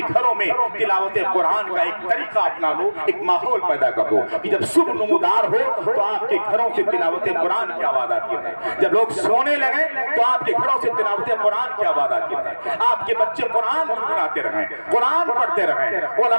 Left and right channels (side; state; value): both; inverted; correlation -1.00